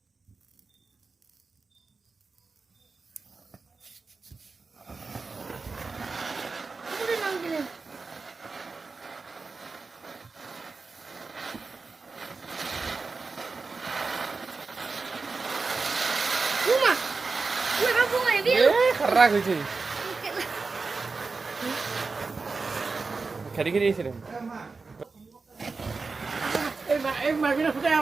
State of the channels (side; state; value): left; quieter; 4.2 dB